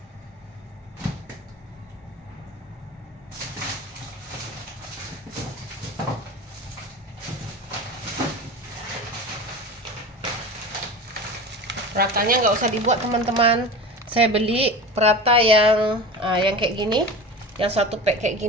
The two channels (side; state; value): both; normal; correlation 0.31